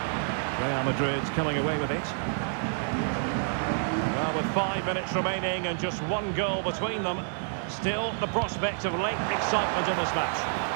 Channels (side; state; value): left; silent; 59 dB below the other